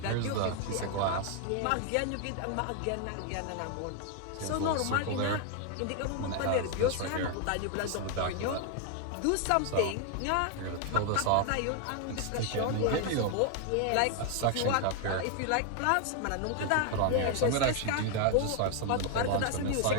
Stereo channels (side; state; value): both; different; correlation 0.00